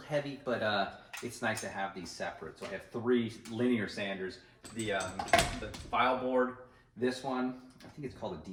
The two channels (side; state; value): both; identical; correlation 1.00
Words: but it's nice to have these separate. So I have 3 linear sanders. The file board, this one, I think it's called a